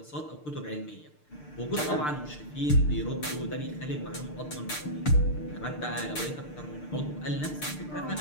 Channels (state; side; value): late; right; 6.6 ms